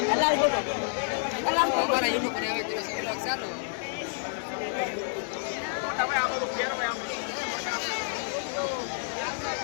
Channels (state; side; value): silent; right; digital silence